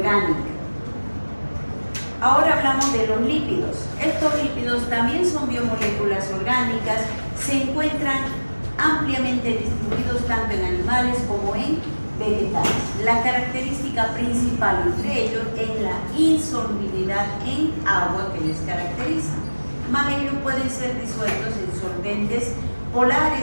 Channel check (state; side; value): inverted; both; correlation -1.00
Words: Ahora hablamos de los lípidos. Estos lípidos también son biomoléculas orgánicas, se encuentran ampliamente distribuidos tanto en animales como en vegetales. La característica principal entre ellos es la insolubilidad en agua que les caracteriza. Más ellos pueden ser disueltos en solventes